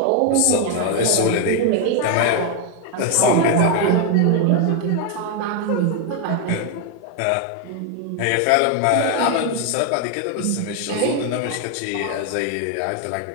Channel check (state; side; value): different; both; correlation 0.01